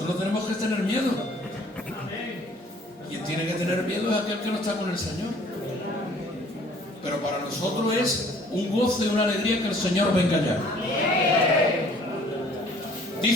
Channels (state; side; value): normal; both; correlation 0.55